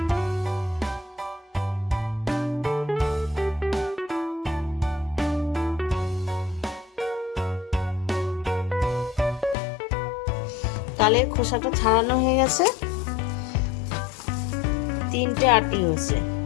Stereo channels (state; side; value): drops out; right; at 9.6 s